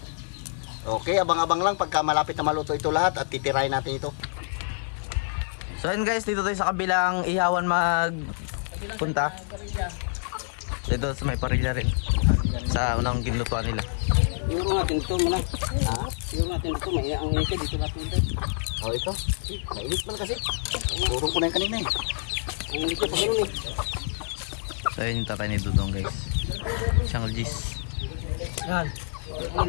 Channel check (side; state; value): right; silent; 60 dB below the other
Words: Okay, abang-abang lang pagka malapit na maluto ito lahat at titirahin natin ito. So yun guys, dito tayo sa kabilang ihawan magpunta. Dito sa may parilla rin. Sa unang ginlutuan nila. Siguro natin ito muna. Ha? Siguro natin ito. May ang ito. Dito natin ito. Oh, ito. Mainit man kasi. Turong ko na yung kanina eh. Ang ito pa rin eh. So yun yung tatay ni Dudong guys. Siyang Gis. Yan. Ang